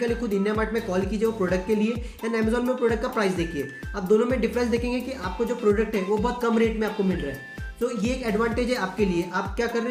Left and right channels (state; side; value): identical; both; correlation 1.00